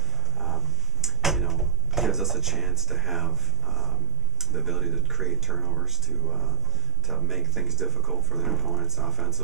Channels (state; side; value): normal; both; correlation 0.98